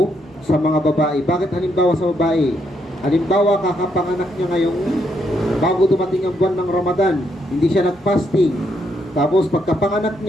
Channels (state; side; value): normal; both; correlation 0.76